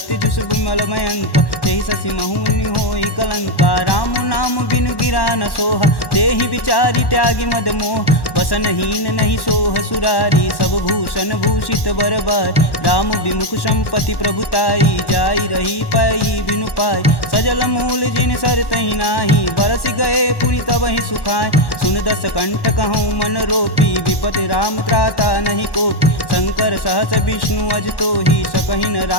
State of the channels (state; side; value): late; right; 1.1 ms